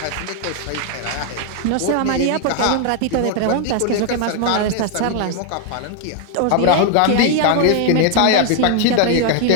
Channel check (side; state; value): both; different; correlation 0.00